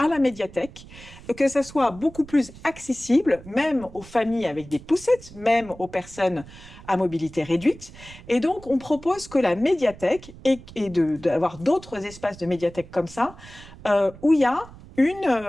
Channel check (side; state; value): right; noise; rumble, 18 dB below the sound